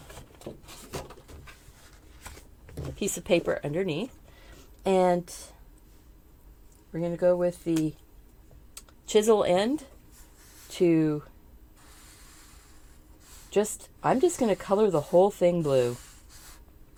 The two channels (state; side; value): identical; both; correlation 1.00